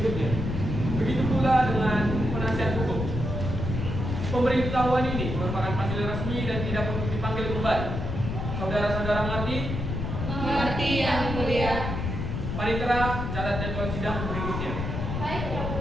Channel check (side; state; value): left; noise; rumble, 3 dB below the sound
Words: Begitu pula dengan penasihat hukum. Pemberitahuan ini merupakan hasil resmi dan tidak perlu dipanggil kembali. Saudara-saudara mengerti? Mengerti yang mulia. Panitera, catat jadwal sidang berikutnya. Baik, yang